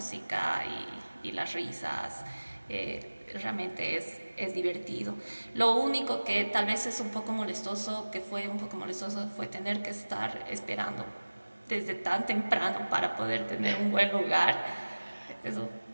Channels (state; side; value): inverted; both; correlation -1.00